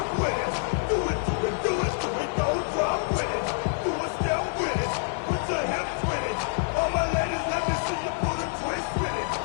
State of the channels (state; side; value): silent; right; 60 dB below the other